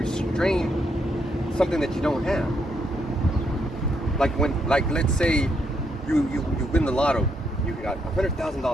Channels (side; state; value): both; normal; correlation 0.77